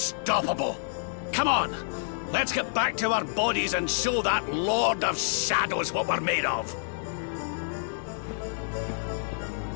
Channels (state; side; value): silent; right; digital silence